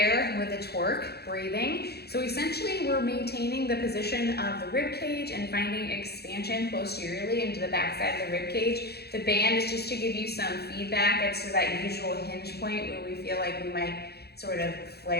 with a twerk breathing. So essentially we're maintaining the position of the rib cage and finding expansion posteriorly into the backside of the rib cage. The band is just to give you some feedback as to that usual hinge point where we feel like we might sort of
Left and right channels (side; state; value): right; late; 0.47 ms